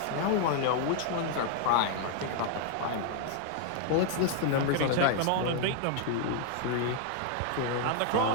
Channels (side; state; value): both; different; correlation 0.00